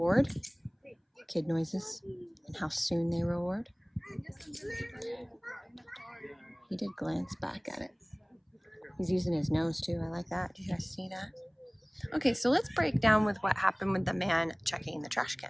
kid noises and how soon they reward. He did glance back at it. He's using his nose too. I like that. Did you guys see that? Okay, so let's break down with what happened with the man checking the trash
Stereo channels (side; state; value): both; identical; correlation 1.00